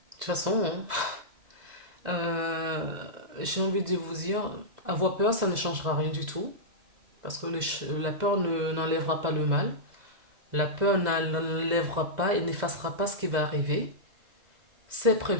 toute façon, hein, j'ai envie de vous dire, avoir peur, ça ne changera rien du tout. Parce que la peur n'enlèvera pas le mal. La peur n'enlèvera pas et n'effacera pas ce qui va arriver. c'est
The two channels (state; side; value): late; left; 2.0 ms